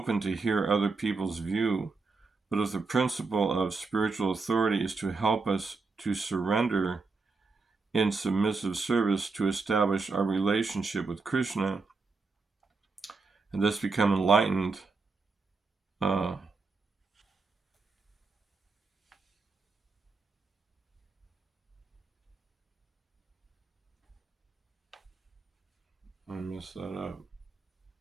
to hear other people's view. But if the principle of spiritual authority is to help us to surrender in submissive service to establish our relationship with Krishna and thus become enlightened, I messed that up.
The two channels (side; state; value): left; quieter; 4.2 dB